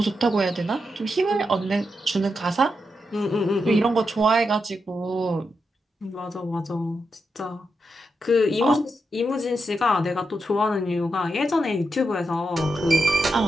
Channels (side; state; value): both; normal; correlation 0.85